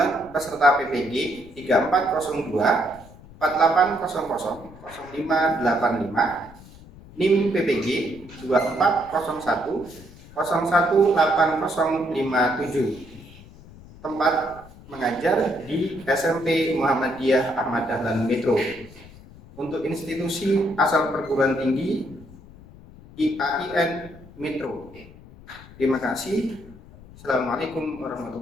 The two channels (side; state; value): left; noise; rumble, 20 dB below the sound